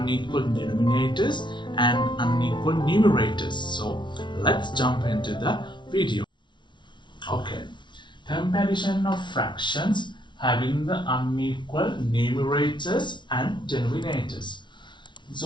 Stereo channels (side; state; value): right; late; 0.23 ms